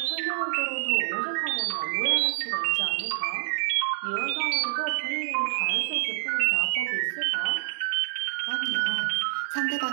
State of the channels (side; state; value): left; silent; 60 dB below the other